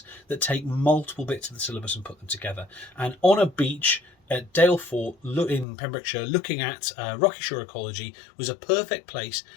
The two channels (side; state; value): right; drops out; at 5.7 s